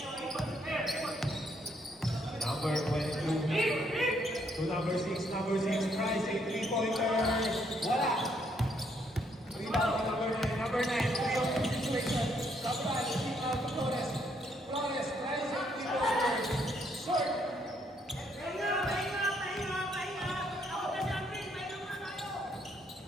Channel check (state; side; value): normal; both; correlation 0.71